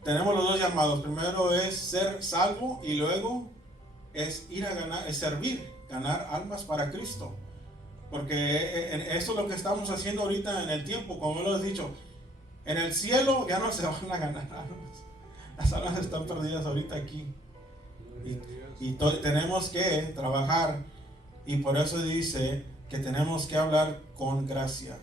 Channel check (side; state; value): both; normal; correlation 0.61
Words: Tenemos los dos llamados. Primero es ser salvo y luego es ir a ganar, es servir, ganar almas para Cristo. Porque eso es lo que estamos haciendo ahorita en el tiempo, como lo he dicho. En el cielo ya no se van a ganar almas. Las almas están perdidas ahorita aquí. Y tenemos que trabajar. Y por eso dice que tenemos que hablar con gracia.